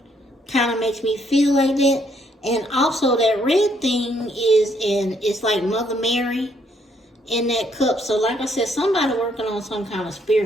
kind of makes me feel like that. And also that red thing it's like Mother Mary in that cup. So like I said, somebody working on some kind of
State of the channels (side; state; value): both; normal; correlation 0.70